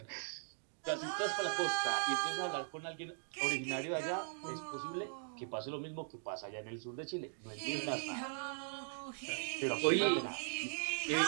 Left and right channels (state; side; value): silent; left; digital silence